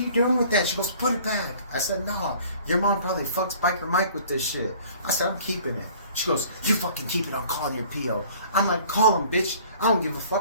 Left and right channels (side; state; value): both; inverted; correlation -0.51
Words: doing with that? She goes, put it back. I said, no, your mom probably fucks Biker Mike with this shit. I said, I'm keeping it. She goes, you fucking keep it, I'm calling your P.O. I'm like, call him, bitch. I don't give a